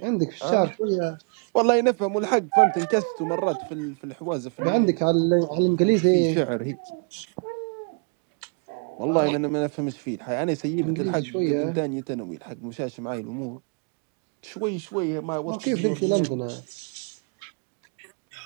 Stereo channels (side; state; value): left; quieter; 38.0 dB